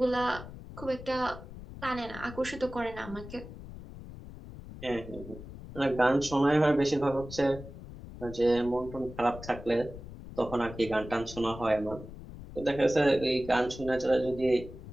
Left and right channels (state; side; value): noise; left; rumble, 14 dB below the sound